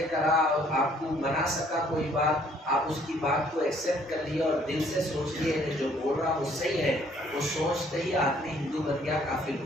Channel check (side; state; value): both; normal; correlation 0.62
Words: کرا اور آپ کو منا سکا کوئی بات، آپ اس کی بات کو ایکسیپٹ کر لیا اور دل سے سوچ لیے کہ جو بول رہا وہ صحیح ہے. وہ سوچتے ہی آدمی ہندو بن گیا، کافر ہو